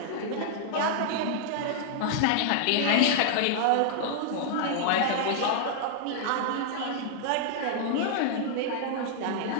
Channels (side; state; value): both; different; correlation -0.01